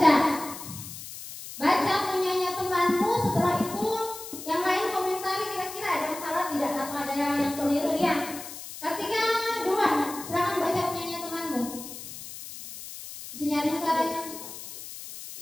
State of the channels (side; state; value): left; noise; hiss, 12 dB below the sound